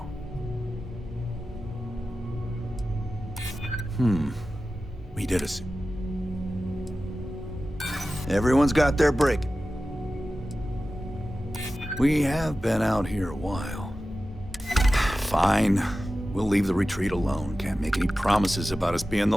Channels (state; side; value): normal; both; correlation 0.94